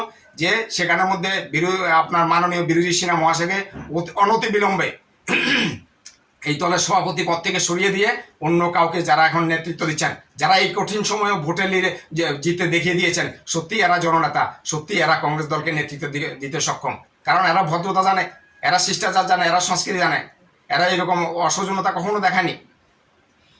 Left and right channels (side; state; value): both; identical; correlation 1.00